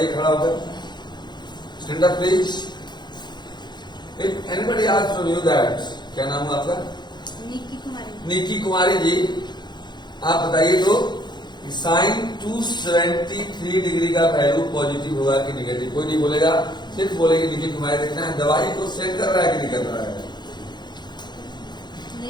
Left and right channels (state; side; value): late; right; 0.21 ms